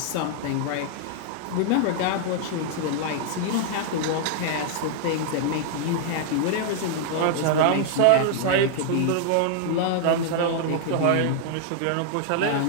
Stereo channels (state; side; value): different; both; correlation -0.01